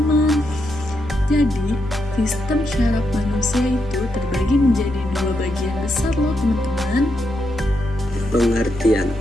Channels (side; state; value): both; normal; correlation 0.82